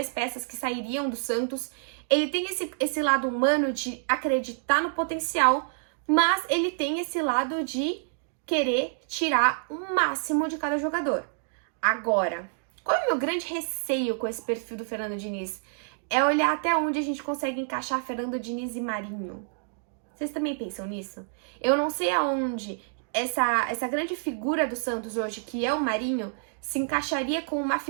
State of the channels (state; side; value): silent; left; digital silence